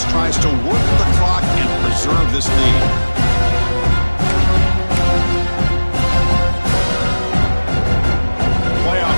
tries to work the clock and preserve this lead. Playoff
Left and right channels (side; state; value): both; inverted; correlation -1.00